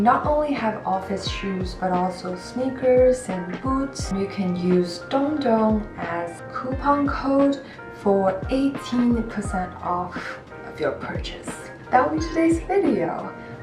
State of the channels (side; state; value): both; identical; correlation 1.00